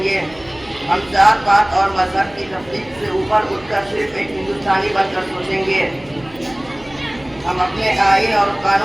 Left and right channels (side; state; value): right; noise; hum, 24 dB below the sound